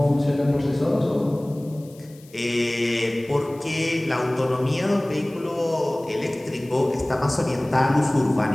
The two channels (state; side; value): noise; left; hiss, 26 dB below the sound